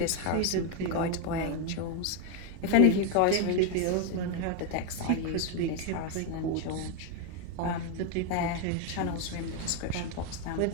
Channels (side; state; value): both; different; correlation 0.01